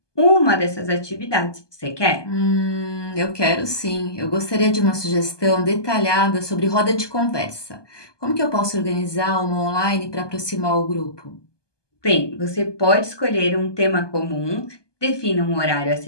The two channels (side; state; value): right; late; 1.2 ms